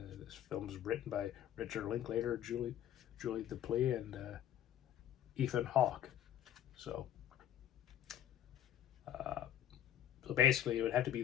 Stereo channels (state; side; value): quieter; right; 11.1 dB